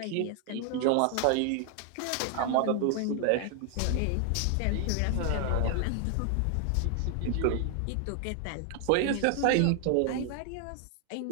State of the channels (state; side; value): different; both; correlation 0.00